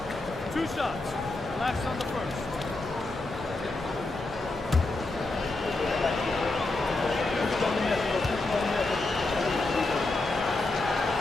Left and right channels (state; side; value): quieter; right; 3.0 dB